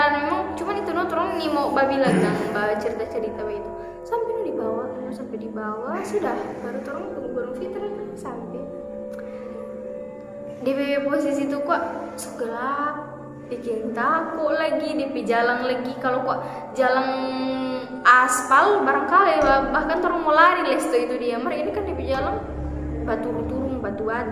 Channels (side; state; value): both; identical; correlation 1.00